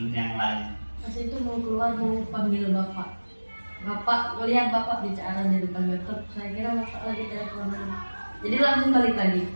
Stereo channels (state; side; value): inverted; both; correlation -1.00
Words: yang lain? Pas itu mau keluar mau panggil bapak. Bapak melihat bapak bicara di depan laptop, saya kira bapak lagi teleponan. Jadi langsung balik lagi ke